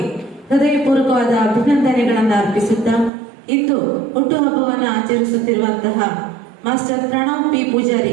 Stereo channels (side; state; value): left; drops out; at 3.1 s